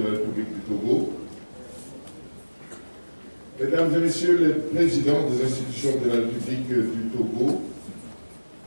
la République du Togo, Mesdames et Messieurs les présidents des institutions de la République du Togo,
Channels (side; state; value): both; inverted; correlation -1.00